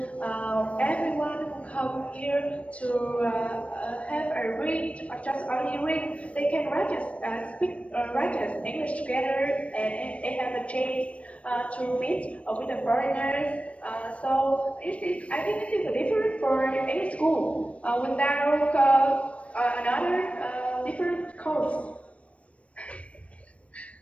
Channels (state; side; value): late; right; 0.063 ms